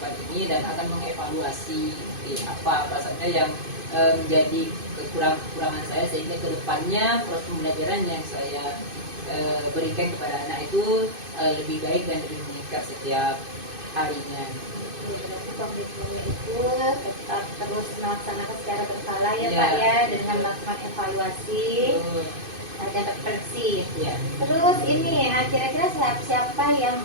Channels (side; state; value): left; late; 2.5 ms